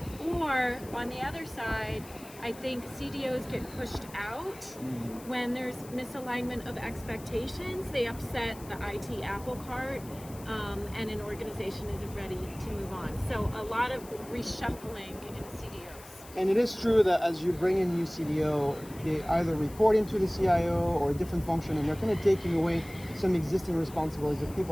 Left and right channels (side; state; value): left; noise; hiss, 19 dB below the sound